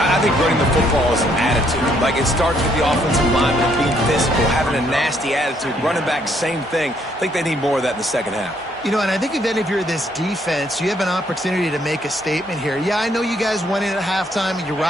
think running the football is an attitude. Like, it starts with the offensive lineman being physical, having a nasty attitude. Running back, same thing. I think they need more of that in the second half. You know, and I think if you're this defense, you have an opportunity to make a statement here. Yeah, I know you guys went in at halftime and you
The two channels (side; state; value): both; normal; correlation 0.69